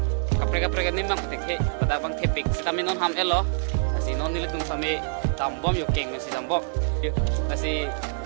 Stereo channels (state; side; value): silent; left; digital silence